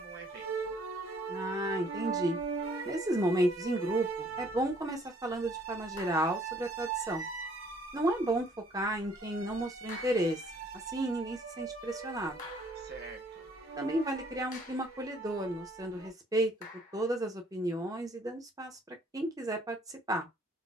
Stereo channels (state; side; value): normal; both; correlation 0.61